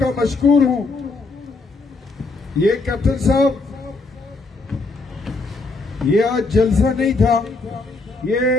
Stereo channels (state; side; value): quieter; right; 3.5 dB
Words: مشکور ہوں. یہ کیپٹن صاحب، یہ آج جلسہ نہیں تھا، یہ